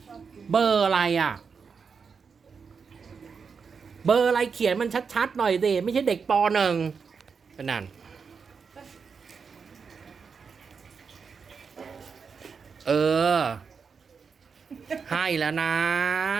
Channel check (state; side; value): quieter; left; 5.7 dB